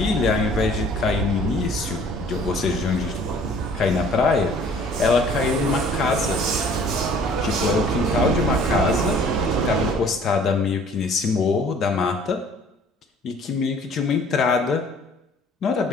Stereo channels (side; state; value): both; normal; correlation 0.53